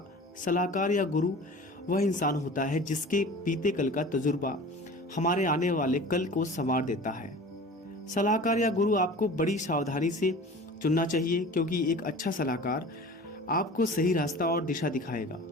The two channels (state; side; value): normal; both; correlation 0.40